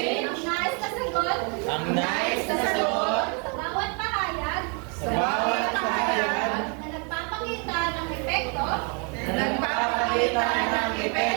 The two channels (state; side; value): quieter; left; 35.4 dB